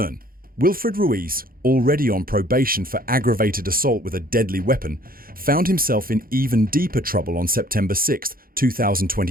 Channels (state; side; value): late; left; 0.42 ms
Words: Wilfred Ruiz, already on probation for aggravated assault with a deadly weapon, found himself in even deeper trouble on September 6,